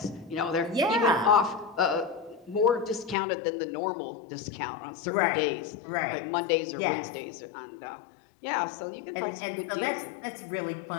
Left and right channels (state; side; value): drops out; right; at 3.2 s